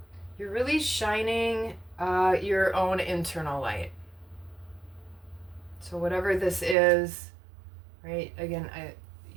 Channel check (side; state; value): left; drops out; at 6.8 s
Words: You're really shining your own internal light. So whatever this is, right? Again,